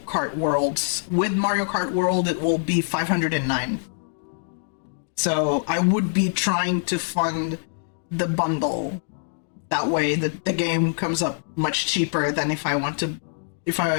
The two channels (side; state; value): right; silent; digital silence